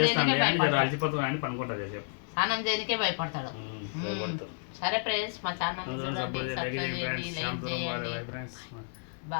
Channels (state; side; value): silent; right; 57 dB below the other